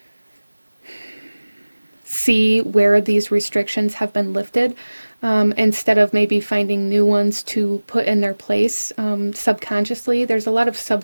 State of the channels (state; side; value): inverted; both; correlation -1.00